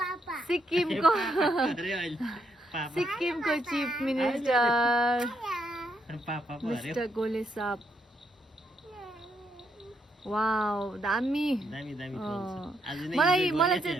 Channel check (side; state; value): both; normal; correlation 0.77